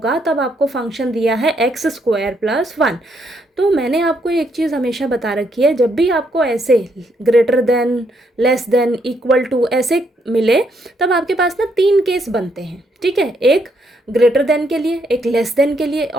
तब आपको फंक्शन दिया है x स्क्वायर प्लस 1। तो मैंने आपको एक चीज़ हमेशा बता रखी है, जब भी आपको ऐसे greater than, less than, equal to ऐसे मिले तब आपके पास ना 3 केस बनते हैं, ठीक है। एक ग्रेटर देन के लिए, एक लेस देन के लिए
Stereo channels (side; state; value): both; normal; correlation 0.74